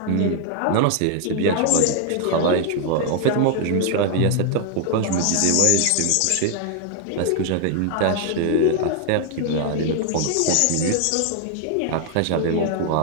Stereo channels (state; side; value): different; both; correlation 0.00